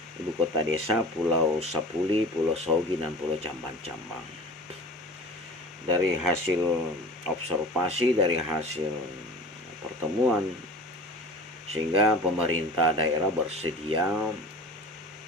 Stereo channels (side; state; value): both; normal; correlation 0.38